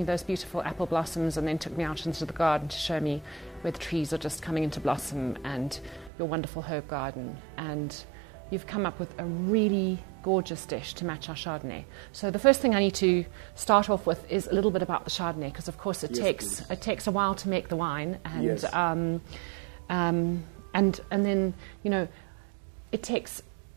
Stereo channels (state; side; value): drops out; left; at 6.1 s